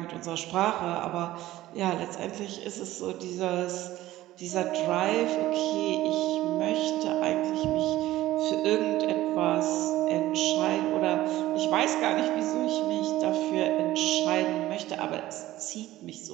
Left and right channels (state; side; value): quieter; left; 15.6 dB